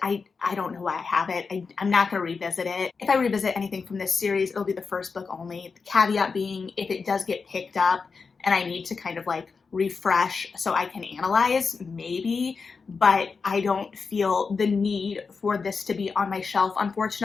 I don't know why I have it. I'm not going to revisit it. If I revisit anything from this series, it'll be the first book only. The caveat being, if it does get picked up and I need to kind of like refresh so I can analyze, maybe, but I don't feel the need for this to be on my shelf,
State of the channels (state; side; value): quieter; right; 4.9 dB